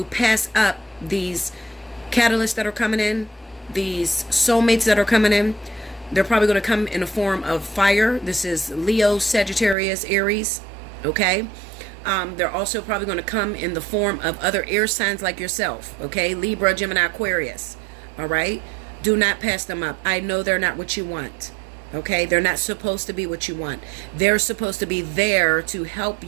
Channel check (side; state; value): left; drops out; at 9.8 s